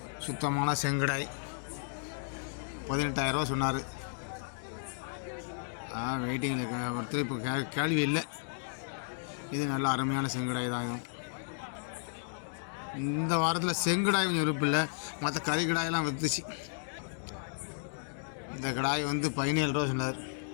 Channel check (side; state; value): right; silent; digital silence